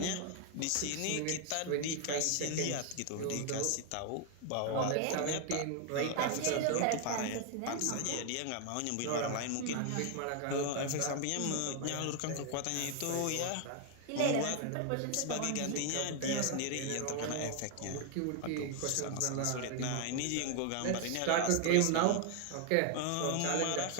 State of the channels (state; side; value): different; both; correlation 0.00